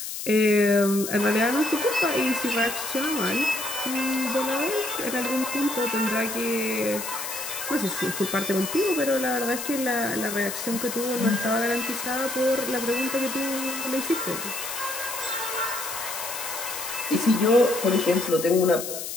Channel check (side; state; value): left; noise; hiss, 6 dB below the sound